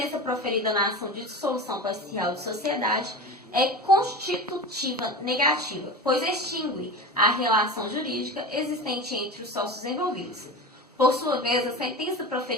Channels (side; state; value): both; normal; correlation 0.29